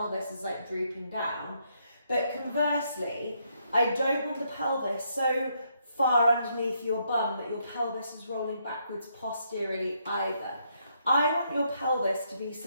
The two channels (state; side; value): inverted; both; correlation -0.75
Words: is drooping down? But conversely, I don't want the pelvis so far underneath your bum that your pelvis is rolling backwards posteriorly either. I want your pelvis to be